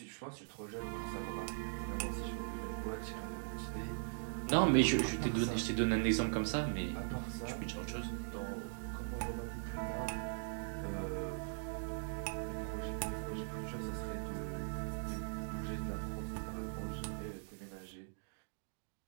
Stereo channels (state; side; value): silent; left; digital silence